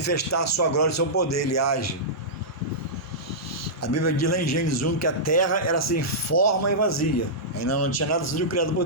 a sua glória e seu poder. Ele age. A Bíblia diz lá em Gênesis 1 que a terra era sem forma e vazia. Ainda não tinha nada sido criado por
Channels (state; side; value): normal; both; correlation -0.14